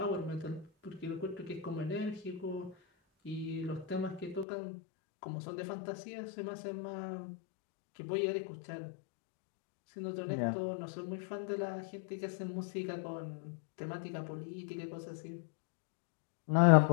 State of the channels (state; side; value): drops out; right; at 4.5 s